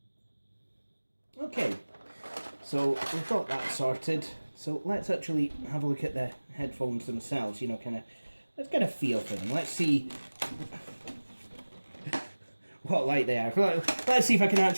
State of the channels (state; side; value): inverted; both; correlation -1.00